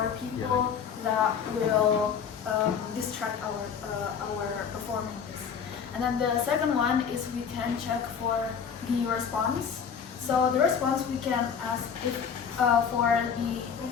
people that will distract our performance. And then the second one is we can check for the response. So the response we can ask if for the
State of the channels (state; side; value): quieter; right; 7.0 dB